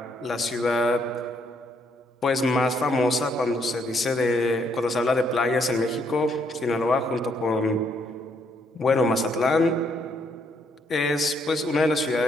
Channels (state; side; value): normal; both; correlation 0.71